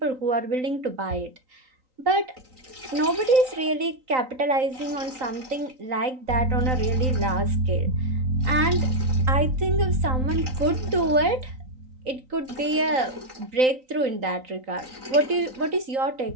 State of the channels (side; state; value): left; late; 3.9 ms